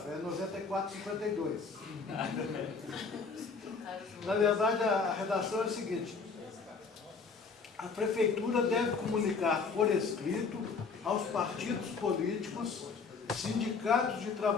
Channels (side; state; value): right; quieter; 4.9 dB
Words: é 9452. Na verdade, a redação é a seguinte: a prefeitura deve comunicar por escrito aos partidos políticos, sindicatos de